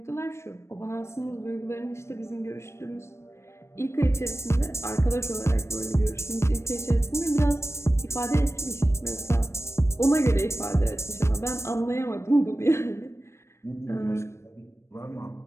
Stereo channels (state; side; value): late; right; 0.13 ms